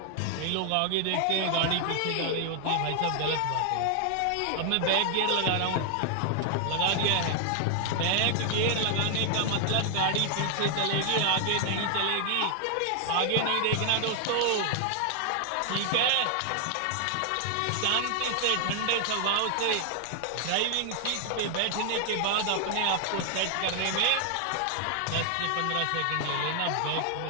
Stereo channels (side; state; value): both; different; correlation 0.00